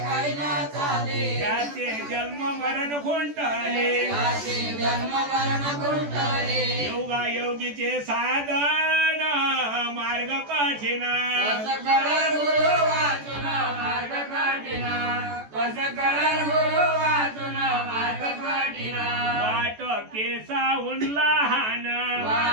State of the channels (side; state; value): left; late; 14 ms